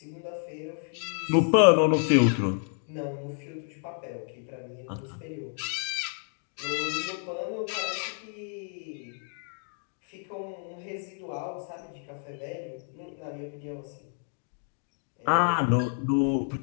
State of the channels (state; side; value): silent; right; 56 dB below the other